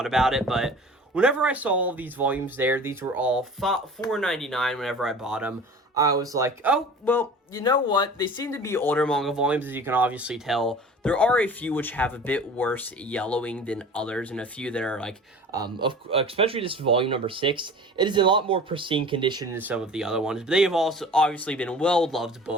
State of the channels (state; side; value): normal; both; correlation 0.41